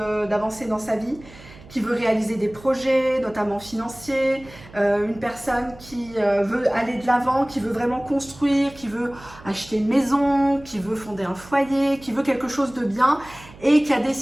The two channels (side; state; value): right; noise; hum, 20 dB below the sound